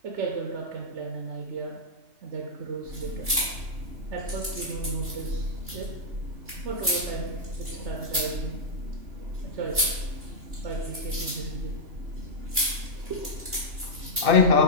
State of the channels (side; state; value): left; late; 2.9 ms